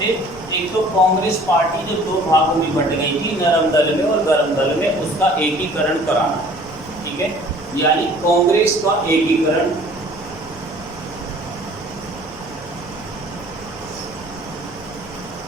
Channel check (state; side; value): noise; left; rumble, 20 dB below the sound